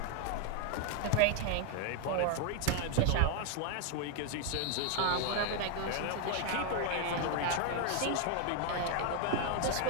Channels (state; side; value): different; both; correlation 0.00